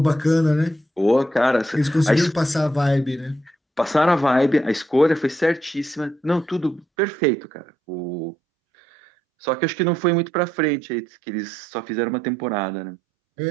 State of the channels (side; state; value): left; drops out; at 6.9 s